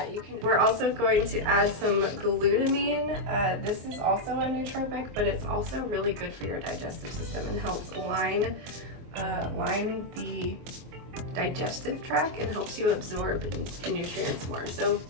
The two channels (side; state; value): left; late; 24 ms